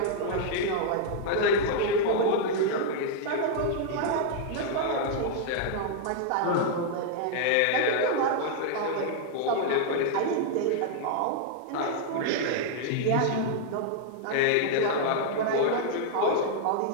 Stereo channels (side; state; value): both; different; correlation -0.01